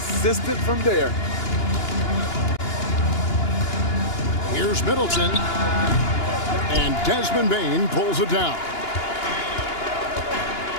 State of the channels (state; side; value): late; right; 2.9 ms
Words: from there. Here's Middleton. And Desmond Bane pulls it down.